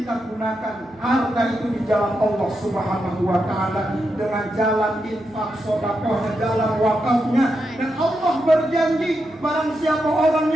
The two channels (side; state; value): right; noise; hum, 29 dB below the sound